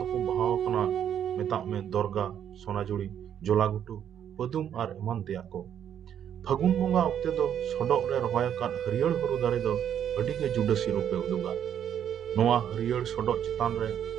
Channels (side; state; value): left; quieter; 9.4 dB